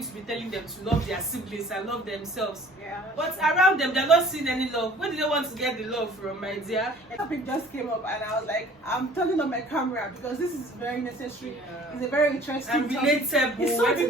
to be telling them to love their siblings and love themselves. yeah. But around them, they're not seeing any love. Where do they want to get the love from, my dear? A topic just came up and I was like, I'm turning on my camera because this is very necessary. Yeah. It's a very interesting And topic. relatable. It's something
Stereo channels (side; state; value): both; normal; correlation 0.51